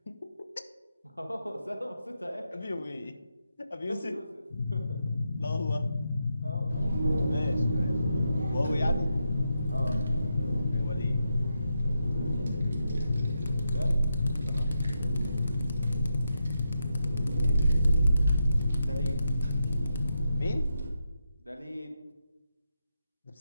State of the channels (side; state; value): both; inverted; correlation -0.85